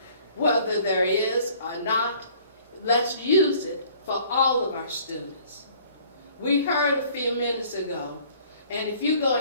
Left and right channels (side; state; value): both; inverted; correlation -0.55